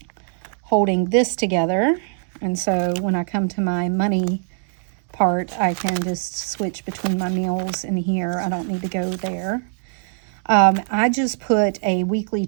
holding this together. And so when I come to my money part, I can just switch between my meals and here. I don't need to go there. I just put a weekly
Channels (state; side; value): silent; left; 57 dB below the other